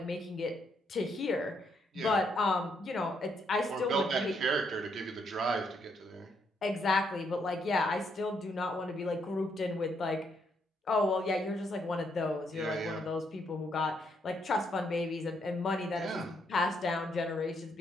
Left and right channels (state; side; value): normal; both; correlation 0.75